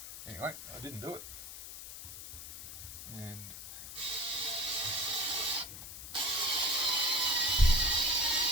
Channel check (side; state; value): left; noise; hiss, 11 dB below the sound